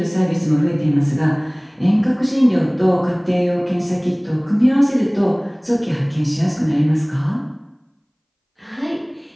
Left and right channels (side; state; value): both; identical; correlation 1.00